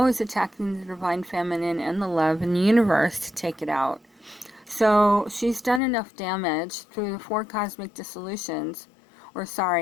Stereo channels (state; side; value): drops out; right; at 5.8 s